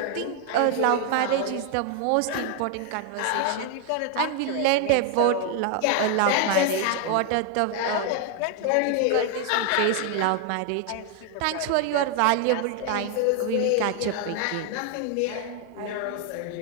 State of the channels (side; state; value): both; different; correlation 0.00